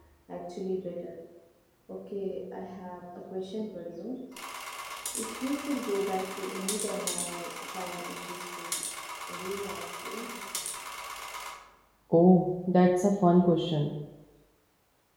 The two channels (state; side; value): identical; both; correlation 1.00